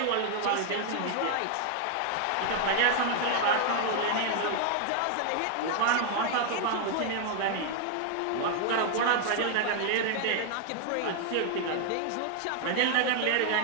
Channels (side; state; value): both; different; correlation 0.00